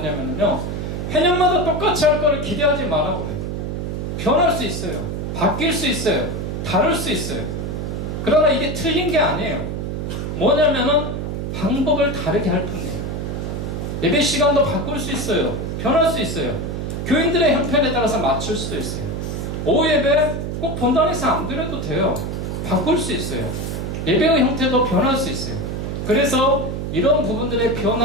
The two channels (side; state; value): right; noise; hum, 4 dB below the sound